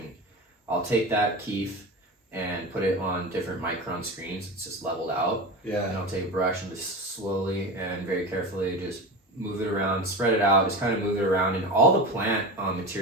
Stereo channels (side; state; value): both; normal; correlation 0.26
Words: I'll take that keef and put it on different micron screens. It's just leveled out. Yeah. And I'll take a brush and just slowly and very carefully just move it around, spread it out, just kind of move it around, and all the plant